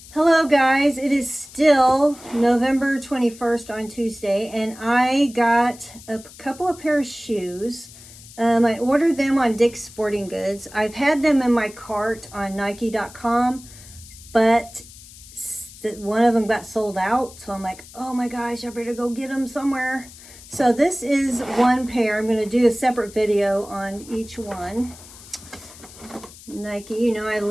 Hello guys, it is still November 21st on Tuesday, and I got a couple of pair of shoes. I ordered them on Dick's Sporting Goods. I've had them in my cart on Nike.com, but one of them got sold out, so I'm like, oh my gosh, I better go get them somewhere. So this is one pair. I'm going to do a separate video on each one. Nike, you know I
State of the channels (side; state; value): left; noise; hiss, 19 dB below the sound